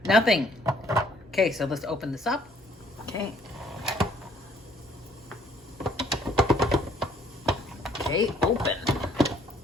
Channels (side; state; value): both; normal; correlation 0.62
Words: nothing. Okay, so let's open this up. Okay. Okay, open.